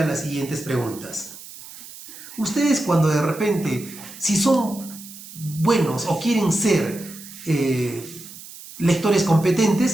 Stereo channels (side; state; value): right; noise; hiss, 16 dB below the sound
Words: las siguientes preguntas. Ustedes cuando de repente, si son buenos o quieren ser lectores